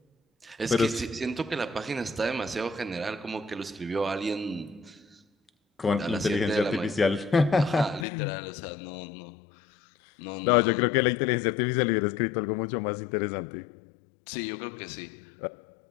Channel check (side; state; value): right; drops out; at 8.1 s